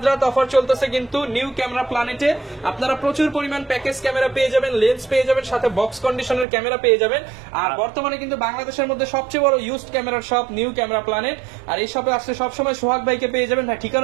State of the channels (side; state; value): left; drops out; at 6.5 s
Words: রাত অফার চলতেছে কিন্তু নিউ ক্যামেরা প্ল্যানেটে। আপনারা প্রচুর পরিমাণ প্যাকেজ ক্যামেরা পেয়ে যাবেন, লেন্স পেয়ে যাবেন, সাথে বক্স কন্ডিশনের ক্যামেরা পেয়ে যাবেন। আর বর্তমানে কিন্তু বাংলাদেশের মধ্যে সবচেয়ে বড় ইউজড ক্যামেরার শপ নিউ ক্যামেরা প্ল্যানেট। আর এই শপে আসলে সবসময় সোহাগ ভাইকে পেয়ে যাবেন। ভাই